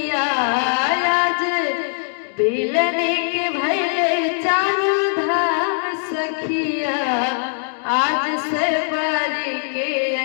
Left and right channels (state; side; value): silent; right; digital silence